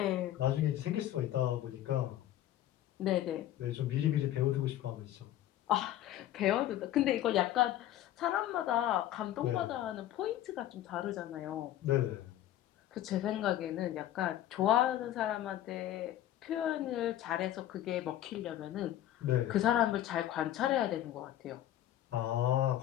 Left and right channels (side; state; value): right; quieter; 12.8 dB